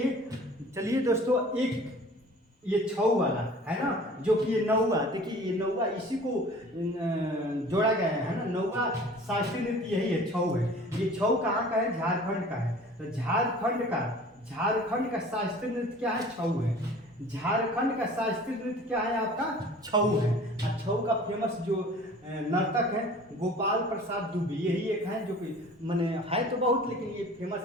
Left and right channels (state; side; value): normal; both; correlation 0.46